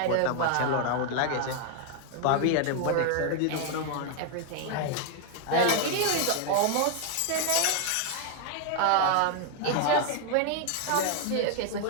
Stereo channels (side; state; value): both; different; correlation 0.00